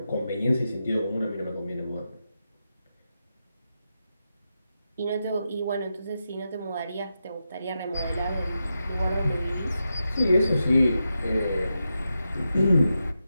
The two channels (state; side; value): inverted; both; correlation -0.88